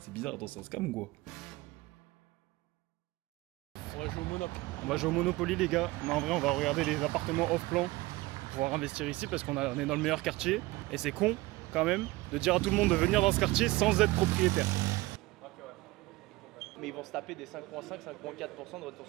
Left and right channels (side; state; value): left; quieter; 20.4 dB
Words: bizarre, dans un scam ou quoi? On va jouer au Monopoly. On va jouer au Monopoly les gars. Mais en vrai on va regarder les appartements off-plan pour pouvoir investir ici parce qu'on est dans le meilleur quartier. Et c'est con quand même de dire à tout le monde de venir dans ce quartier sans être propriétaire. Mais ils vont se taper des 5,5-5,4% de retour